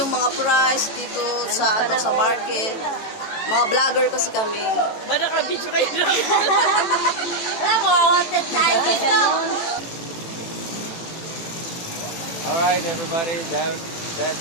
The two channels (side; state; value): right; late; 18 ms